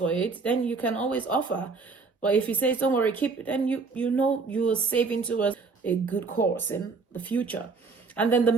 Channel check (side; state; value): left; quieter; 4.4 dB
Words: it. Then you can always offer. But if he says, don't worry, keep it, then you know you are saving to a good course in the future. And then the